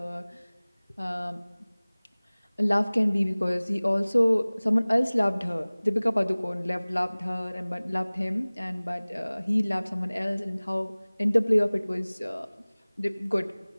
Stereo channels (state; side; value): inverted; both; correlation -1.00